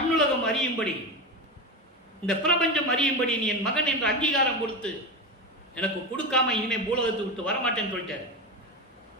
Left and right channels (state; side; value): normal; both; correlation 0.20